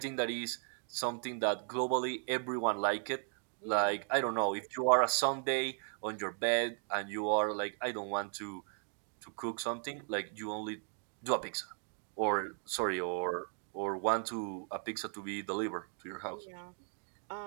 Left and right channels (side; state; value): left; silent; 53 dB below the other